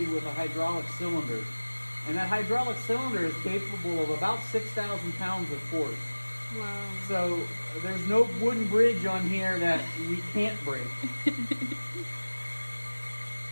with a hydraulic cylinder. And that hydraulic cylinder is capable of about 6,000 pounds of force. Wow. So there's no wooden bridge on here that we can't break.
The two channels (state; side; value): inverted; both; correlation -1.00